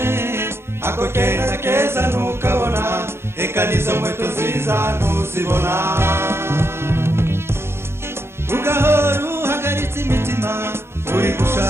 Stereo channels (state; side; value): late; left; 0.12 ms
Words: ako keza keza ntukabona eka nizo nkweto nziza ntuzibona ugahora uhagaritse imitima uri